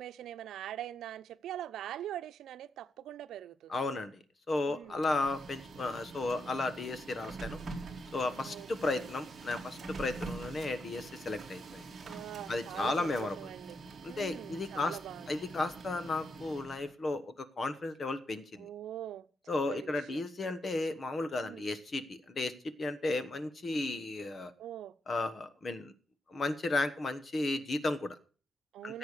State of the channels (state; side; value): normal; both; correlation 0.82